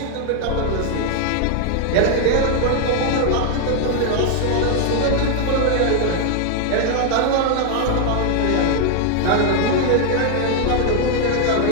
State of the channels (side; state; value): both; different; correlation 0.00